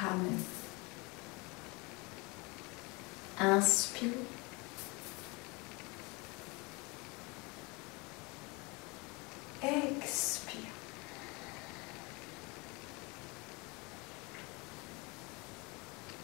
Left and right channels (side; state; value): right; quieter; 27.4 dB